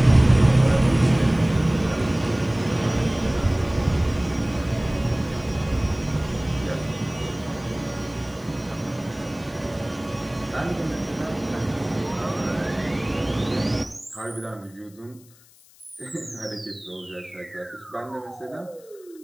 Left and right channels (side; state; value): left; noise; hiss, 27 dB below the sound